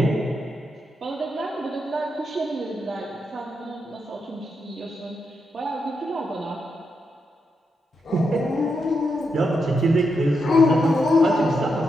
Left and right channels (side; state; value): both; normal; correlation 0.83